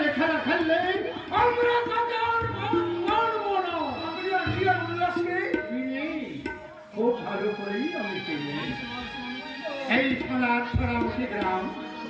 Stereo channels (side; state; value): both; identical; correlation 1.00